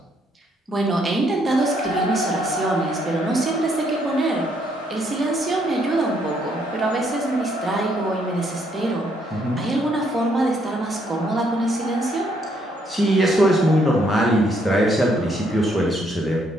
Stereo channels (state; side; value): normal; both; correlation 0.71